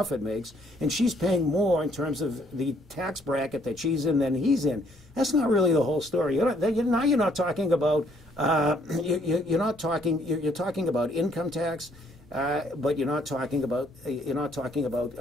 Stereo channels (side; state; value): both; normal; correlation 0.65